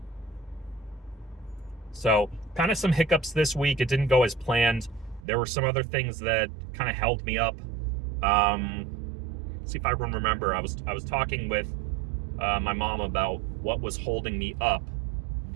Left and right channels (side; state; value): left; drops out; at 5.2 s